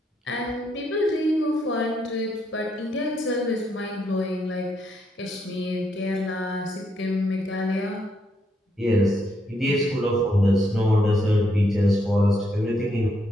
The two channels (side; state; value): both; normal; correlation 0.76